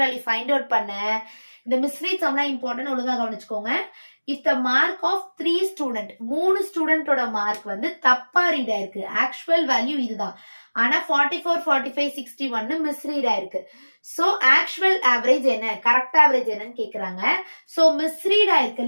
வேல்யூ ஃபைண்ட் அவுட் பண்ண. இந்த மிஸ்ரீட்ஸ் எல்லாம் இம்பார்ட்டன்ட், ஒழுங்கா கவனிச்சுக்கோங்க. If the mark of 3 student, 3 ஸ்டூடெண்டோட மார்க் வந்து தப்பா ரீட் ஆயிருக்கு, ஆக்சுவல் வேல்யூ இதுதான், ஆனா 44, 45, 61 மிஸ்ரீட் ஆயிருக்கு. சோ ஆக்சுவல் ஆவரேஜ் என்ன, கரெக்ட் ஆவரேஜ் என்னன்னு கேக்குறாங்க. சோ மிஸ்ரீட்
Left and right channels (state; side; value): inverted; both; correlation -1.00